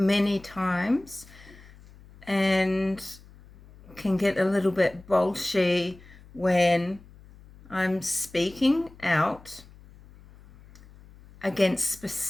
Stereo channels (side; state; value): left; noise; hum, 23 dB below the sound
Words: times and can get a little bit bolshy when I'm speaking out against